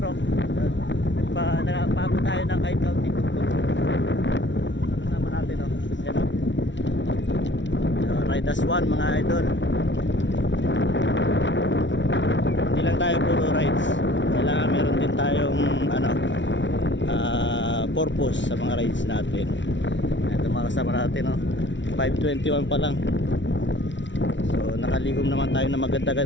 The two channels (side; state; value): right; late; 0.54 ms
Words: Nagpaabot tayo ng kahit kaunting tuktok. Kasama natin o. Ayan o. Ride as one mga idol. Hindi lang tayo puro rides. Kailangan meron din tayong purpose sa mga rides natin. Ito mga kasama natin o. 5:21 pa lang. So nakaligom naman tayo na